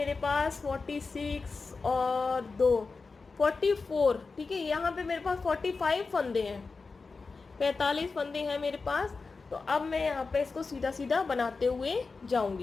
पास 46 और 2 44, ठीक है। यहाँ पे मेरे पास 45 फंदे हैं, 45 फंदे हैं मेरे पास। तो अब मैं यहाँ पे इसको सीधा सीधा बनाते हुए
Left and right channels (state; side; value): quieter; right; 4.3 dB